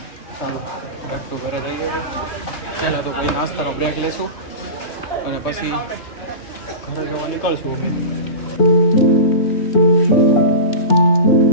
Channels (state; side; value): late; right; 3.2 ms